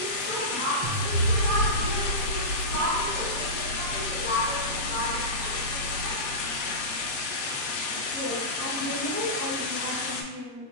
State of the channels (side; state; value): right; late; 8.1 ms